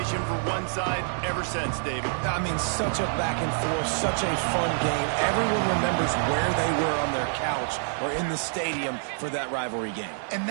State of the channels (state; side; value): silent; left; digital silence